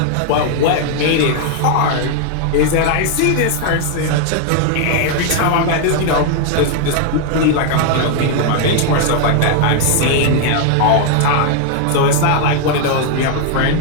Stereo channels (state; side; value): different; both; correlation 0.00